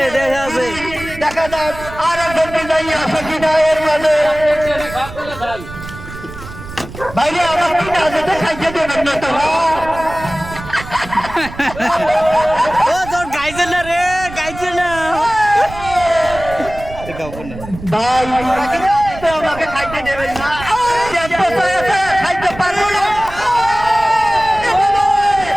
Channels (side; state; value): right; noise; rumble, 13 dB below the sound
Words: দেখা যাক আর একজন বিজয়ী আসে কিনা এর মাঝে। বাইরে আমার কিনা যেতে খাইতে দেবেন না তো গাইছে না রে, গাইছে না ভাই, আমাকে খাইতে দেবেন না, খাইতে পারবো না।